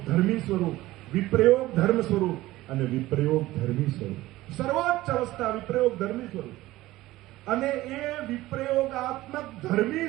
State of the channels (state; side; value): quieter; left; 17.2 dB